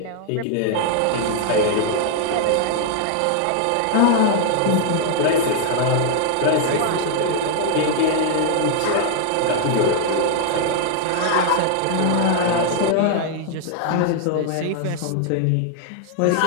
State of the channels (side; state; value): both; different; correlation 0.00